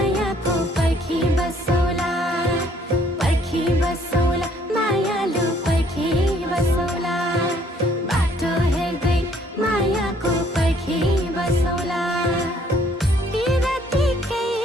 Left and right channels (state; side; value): normal; both; correlation 0.63